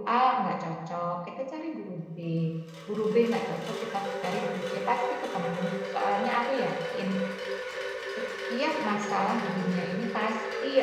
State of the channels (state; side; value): identical; both; correlation 1.00